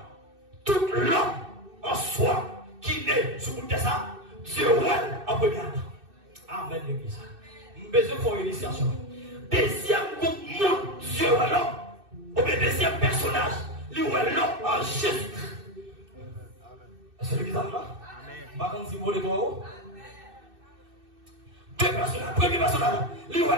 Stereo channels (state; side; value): late; left; 2.6 ms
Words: Tout l'homme en soi qui naît sur le ça, Dieu est en premier Adam. Amen, l'église. Nous avons besoin de faire une initiation. Deuxième groupe, Dieu est l'homme. Ou bien deuxième personnage, lui est l'homme en Jésus. C'est l'église là? Amen. Si vous voulez voir. Deux personnages. Premier personnage, lui